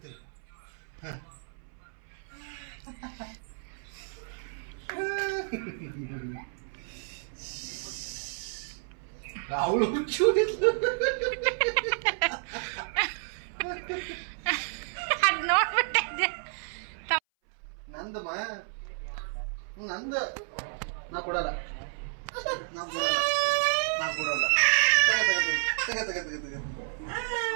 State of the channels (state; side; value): silent; left; 57 dB below the other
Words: ಅವಳು ಅದು ನೋಡ್ಬಿಟ್ಟೆ. ನಂದಮ್ಮ ನಂದು ನಾ ಕೊಡಲ್ಲ.